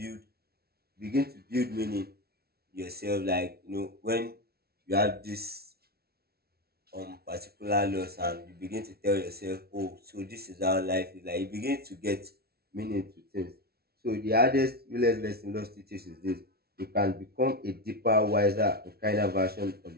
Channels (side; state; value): left; late; 0.45 ms